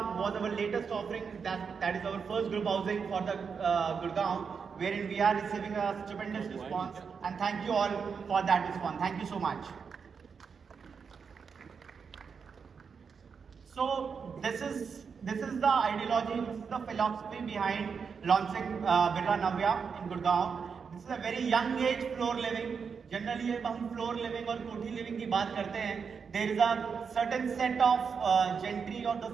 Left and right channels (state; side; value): quieter; left; 6.0 dB